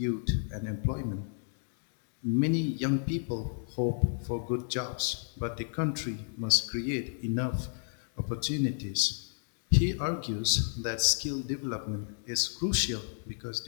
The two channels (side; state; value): right; silent; digital silence